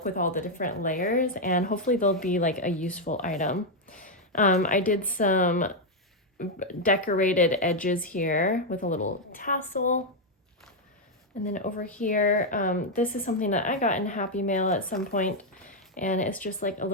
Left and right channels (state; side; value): normal; both; correlation 0.01